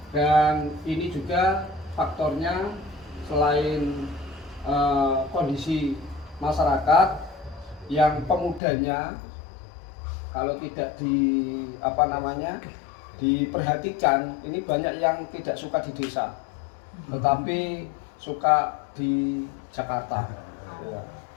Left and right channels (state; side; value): drops out; right; at 8.6 s